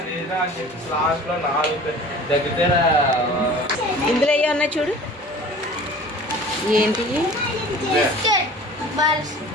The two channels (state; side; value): normal; both; correlation 0.43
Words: లేదా అని చెప్పి లాస్ట్లో 4 దగ్గర ఇందులో అయ్యి ఉన్నాయి చూడు. ఏంటి